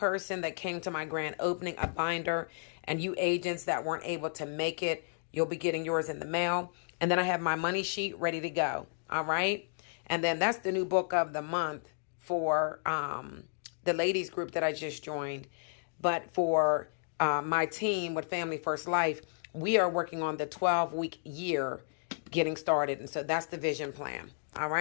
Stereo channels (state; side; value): silent; right; digital silence